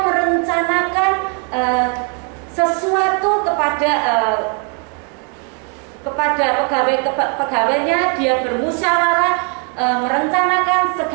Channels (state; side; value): quieter; left; 38.2 dB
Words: merencanakan sesuatu kepada pegawai-pegawainya. Dia bermusyawarah merencanakan